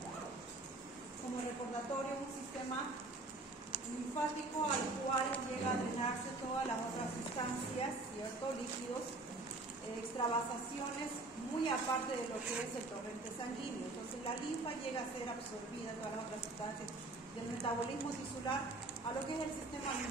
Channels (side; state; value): left; quieter; 3.1 dB